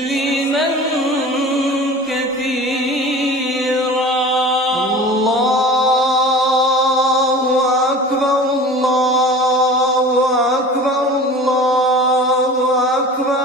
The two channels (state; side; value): normal; both; correlation 0.39